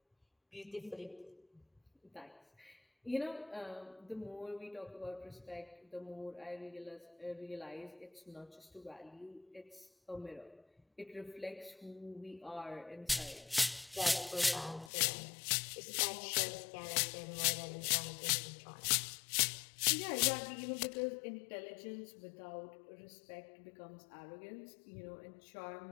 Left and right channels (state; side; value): drops out; right; at 14.9 s